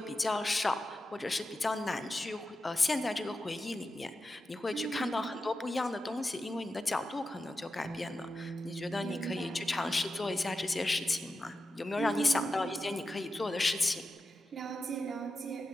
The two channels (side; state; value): both; normal; correlation 0.90